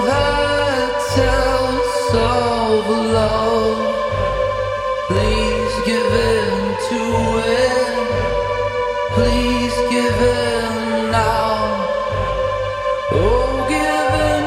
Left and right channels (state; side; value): identical; both; correlation 1.00